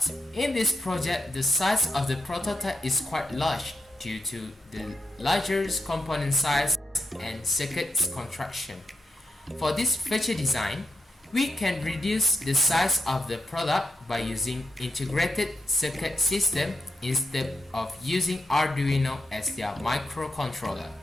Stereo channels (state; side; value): normal; both; correlation 0.85